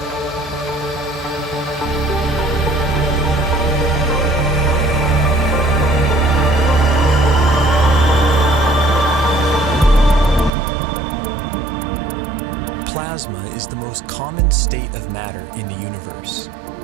Plasma is the most common state of matter in the universe.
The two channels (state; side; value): drops out; left; at 10.5 s